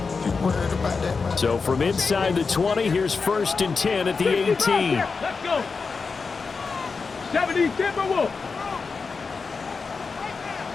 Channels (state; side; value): quieter; right; 4.7 dB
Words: So from inside the 20, here's 1st and 10 at the 18. Let's go. 70 Timberwolf.